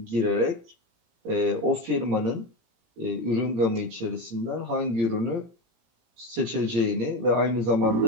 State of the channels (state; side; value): late; left; 17 ms